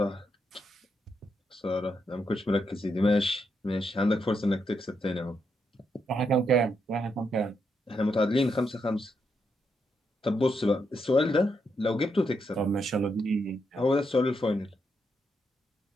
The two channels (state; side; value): normal; both; correlation 0.81